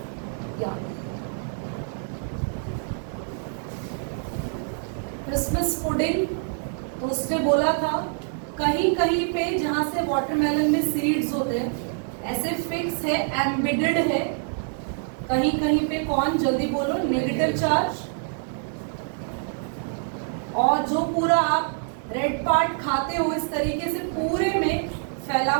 क्रिसमस पुडिंग। तो उसने बोला था कहीं कहीं पे जहां से वाटरमेलन में सीड्स होते हैं ऐसे फिक्स है, एम्बेडेड है, कहीं कहीं पे कौन, जल्दी बोलो, नेगेटिव चार्ज, और जो पूरा आप रेड पार्ट खाते हो इस तरीके से पूरे में फैला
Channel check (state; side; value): silent; left; 61 dB below the other